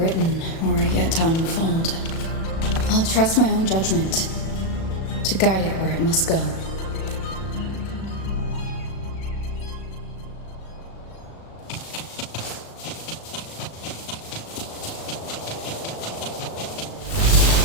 or yet to unfold. I'll trust my own judgment to guide it where it must go.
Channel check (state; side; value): late; right; 36 ms